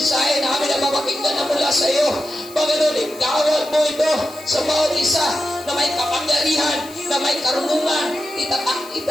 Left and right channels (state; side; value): noise; left; hiss, 19 dB below the sound